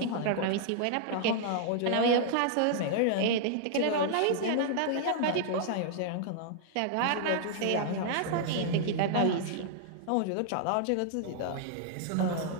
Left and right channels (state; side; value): different; both; correlation -0.01